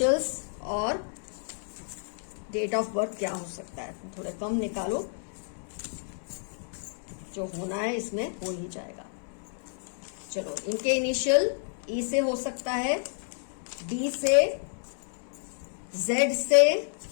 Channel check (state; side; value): silent; right; 56 dB below the other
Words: और डेट ऑफ बर्थ क्या हो सकता है। थोड़े कम निकालो, जो होना है इसमें हो ही जाएगा। चलो, इनके इनिशियल ई से हो सकता है, डी से, जेड से,